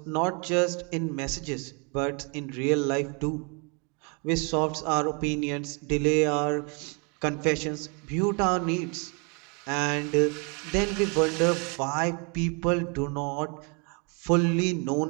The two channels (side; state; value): left; quieter; 34.6 dB